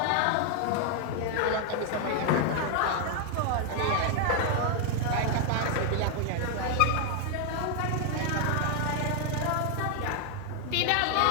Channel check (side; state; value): both; different; correlation 0.00